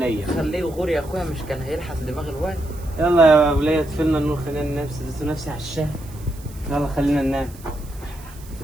خليه يغور يا اخويا، مش كان هيلحس دماغ الواد. يلا يا وليه اطفلنا النور خلينا ننام، سدت نفسي على الشاي. يلا خلينا ننام.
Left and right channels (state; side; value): noise; right; hiss, 22 dB below the sound